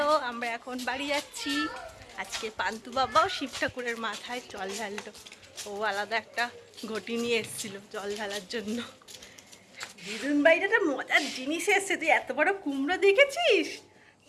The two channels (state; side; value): identical; both; correlation 1.00